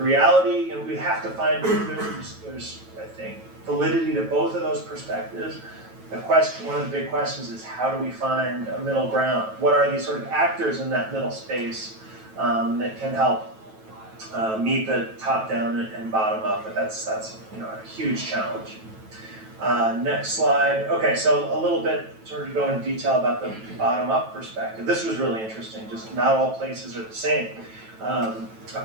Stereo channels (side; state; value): left; late; 9.1 ms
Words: and we have to find, there's I think, validity to both of those perspectives. The question, one of the big questions is, how do we find a middle ground? What are these sort of actors in that middle space that can help meet the top-down and bottom-up? But that's a huge challenge. Next slide. Okay, so a little bit sort of go into detail about the bottom-up perspective. This was really interesting. Just not all places are the same. A